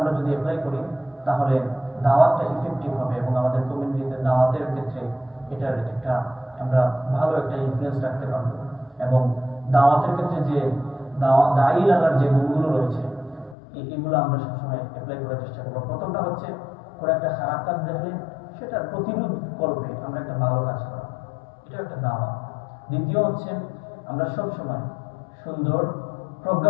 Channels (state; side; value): drops out; right; at 13.6 s